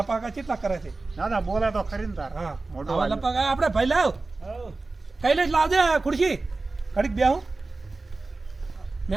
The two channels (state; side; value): quieter; left; 3.5 dB